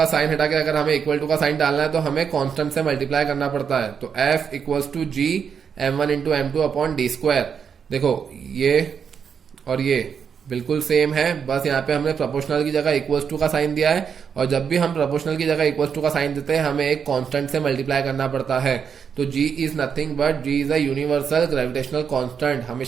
साइन हटा के अगर हमें इक्वल टू का साइन डालना है तो हमें कांस्टेंट से मल्टीप्लाई करना पड़ता है। तो F equals to G m1 into m2 upon d square. देखो ये और ये बिल्कुल सेम है, बस यहाँ पे हमने प्रोपोर्शनल की जगह इक्वल्स टू का साइन दिया है। और जब भी हम प्रोपोर्शनल की जगह इक्वल्स टू का साइन देते हैं हमें एक कांस्टेंट से मल्टीप्लाई करना पड़ता है। तो G is nothing but G is a universal gravitational constant.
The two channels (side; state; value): left; quieter; 6.9 dB